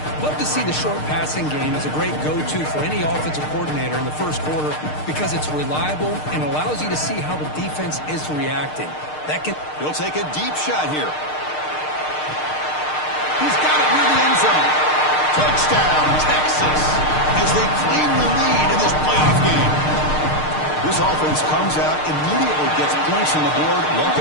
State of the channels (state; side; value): late; right; 6.6 ms